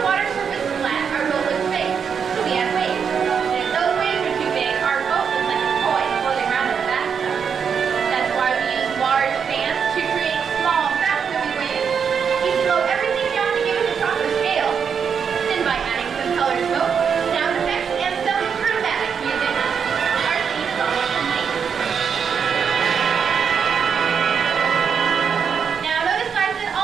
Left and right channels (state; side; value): quieter; left; 6.8 dB